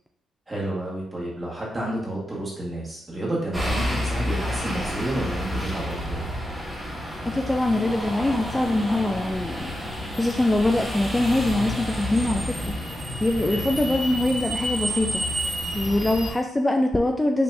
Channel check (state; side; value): normal; both; correlation 0.91